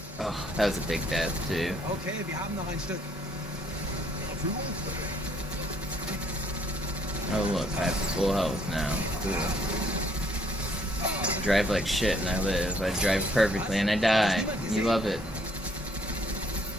Oh, that was a big death too. Okay, wir haben noch ein Stück. Oh look, I have full health now. Cool. I drive like shit and I live. I drive perfectly and I die. You love it.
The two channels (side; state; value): both; normal; correlation 0.66